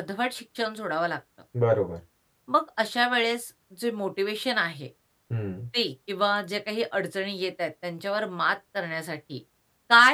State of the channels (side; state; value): both; identical; correlation 1.00